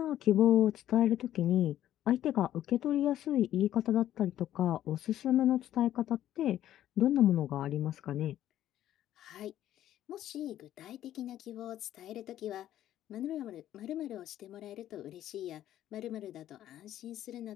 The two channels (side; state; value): right; quieter; 12.4 dB